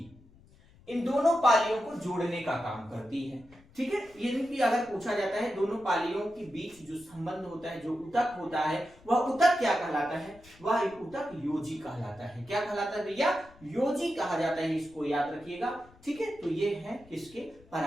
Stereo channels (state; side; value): noise; left; rumble, 25 dB below the sound